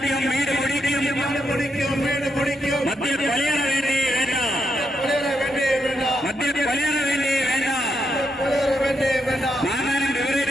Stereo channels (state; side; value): normal; both; correlation 0.81